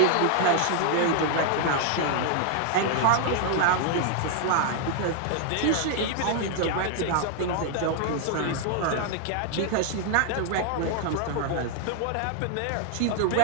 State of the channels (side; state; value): both; different; correlation 0.00